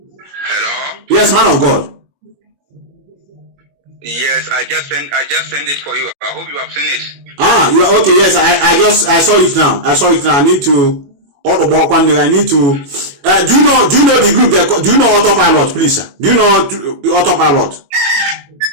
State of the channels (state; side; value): late; left; 21 ms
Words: Hello? Yes, man of God. Yes, I just sent it for you. I hope you have seen it. Ah, you are okay. Yes, I saw it now. I saw it now. I need to I need to do you know the group that do you know autopilot, please, sir? Do you know autopilot?